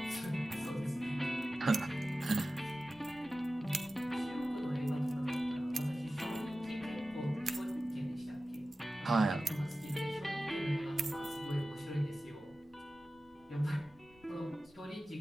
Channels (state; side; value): noise; left; rumble, 29 dB below the sound